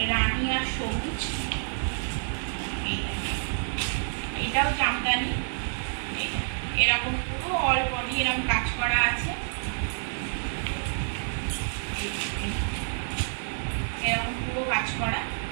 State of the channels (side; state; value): left; silent; digital silence